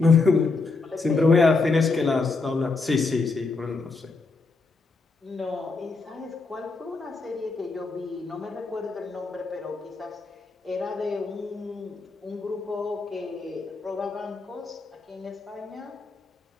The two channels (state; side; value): quieter; right; 3.9 dB